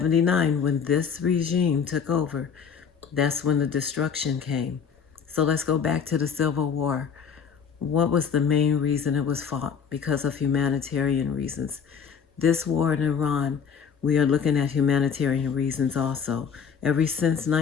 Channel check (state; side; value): quieter; right; 6.8 dB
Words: when this regime took over, that's when the destruction came. So let's go back to the Civil War. What was the main reason it was fought? Because of humanitarian reasons. This war in Iran, we are looking at humanitarian reasons also. Ever since